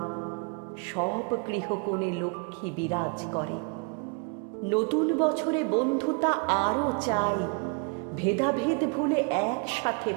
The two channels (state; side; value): quieter; left; 33.6 dB